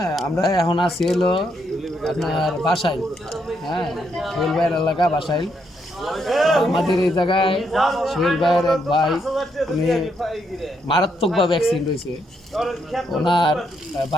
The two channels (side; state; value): both; normal; correlation 0.77